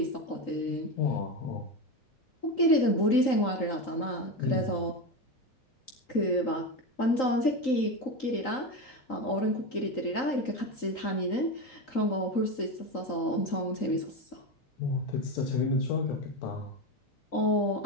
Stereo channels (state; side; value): late; right; 3.8 ms